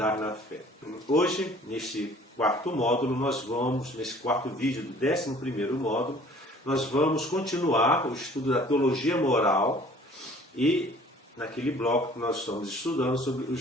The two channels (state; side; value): normal; both; correlation 0.52